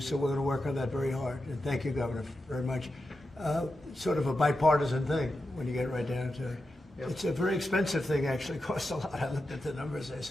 we're going to work on that very hard. And thank you, Governor, very much. Sort of a bipartisan thing when you get right down to it. Yep. It's a very expensive thing, actually. It costs a lot. I looked at the numbers. I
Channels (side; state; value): both; normal; correlation 0.90